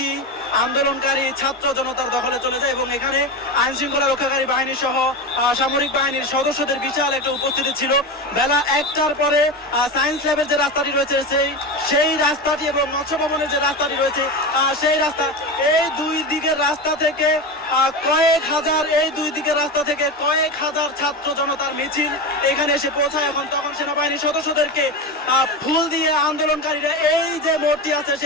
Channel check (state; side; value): normal; both; correlation 0.20